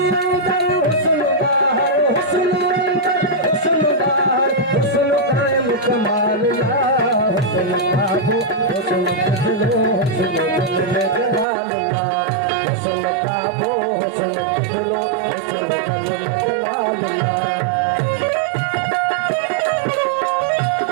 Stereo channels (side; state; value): left; drops out; at 11.5 s